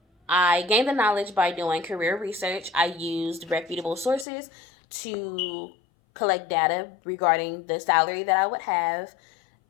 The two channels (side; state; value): right; drops out; at 4.2 s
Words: I gained the knowledge by doing career research. I used reputable sources to collect data regarding the salary that I would have